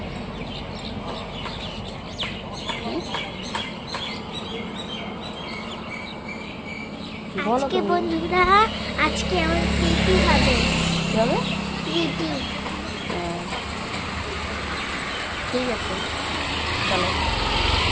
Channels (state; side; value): identical; both; correlation 1.00